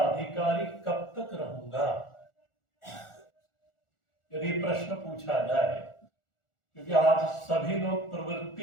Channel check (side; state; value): right; late; 1.4 ms